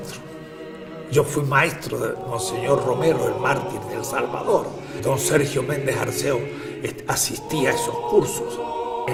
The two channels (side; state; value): both; identical; correlation 1.00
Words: Yo fui maestro de Monseñor Romero, el mártir de El Salvador. Don Sergio Méndez Arceo asistía a esos cursos.